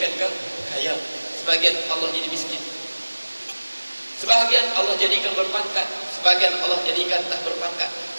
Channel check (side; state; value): both; inverted; correlation -1.00